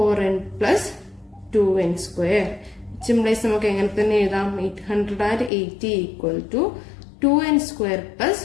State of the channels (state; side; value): drops out; right; at 5.5 s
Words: plus 2n square. Simplify നമുക്ക് എങ്ങനെ തന്നെ എഴുതാം, 880 equal to 2n square